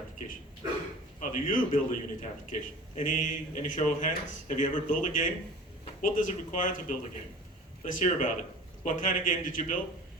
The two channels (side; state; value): both; normal; correlation 0.41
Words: How do you build a Unity application? Any show of hands? Have you ever built a game? What does it require to build a game? Let's hear about it. What kind of game did you build?